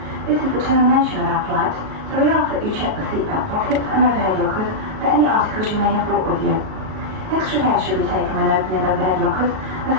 This is the termination of our flight, so we ask that you check the seatbelt pockets and overhead lockers for any articles you may have brought with you. Extra care should be taken when opening overhead lockers, as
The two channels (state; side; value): late; left; 38 ms